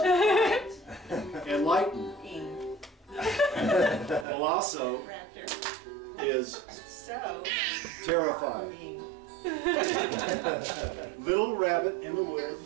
enlighten. Ing. Colosso Raptor. is So terrified. Ing. Little rabbit in the wood.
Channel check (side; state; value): left; drops out; at 4.2 s